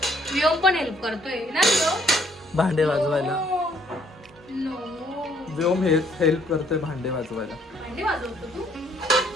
व्योम पण हेल्प करतोय ना व्योम. भांडे वाजवायला. नो व्योम हेल्प करतोय भांडे वाजवायला. भांडी वाजवतो तू.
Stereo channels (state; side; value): normal; both; correlation 0.64